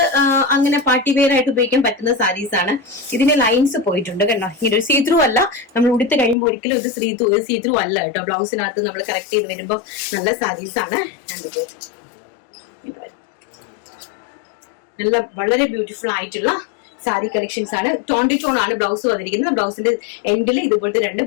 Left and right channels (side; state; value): right; drops out; at 6.4 s